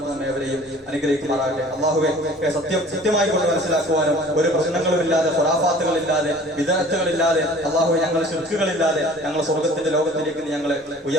തആല അവരെയും അനുഗ്രഹിക്കുമാറാകട്ടെ. അല്ലാഹുവേ, സത്യമായി കൊണ്ട് മനസ്സിലാക്കുവാനും ഒരു പ്രശ്നങ്ങളുമില്ലാതെ, ഖുറാഫാത്തുകളില്ലാതെ, വിദഅത്തുകളില്ലാതെ, അല്ലാഹുവേ ഞങ്ങൾ ശിർക്കുകളില്ലാതെ ഞങ്ങൾ സ്വർഗ്ഗത്തിന്റെ ലോകത്തിലേക്ക് നീ ഞങ്ങളെ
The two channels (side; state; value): both; normal; correlation 0.48